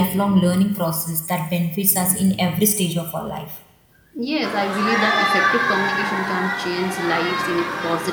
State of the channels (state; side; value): identical; both; correlation 1.00